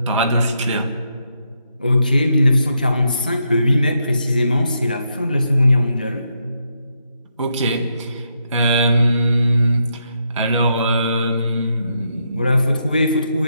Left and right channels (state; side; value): inverted; both; correlation -0.80